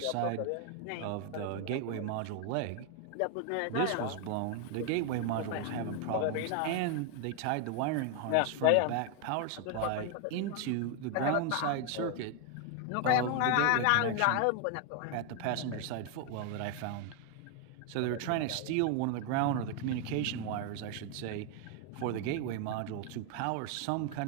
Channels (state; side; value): different; both; correlation 0.00